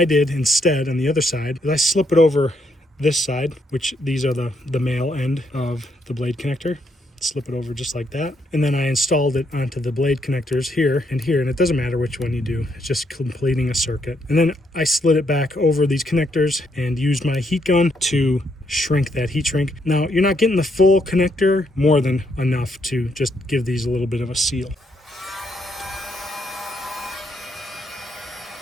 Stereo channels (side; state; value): both; normal; correlation 0.75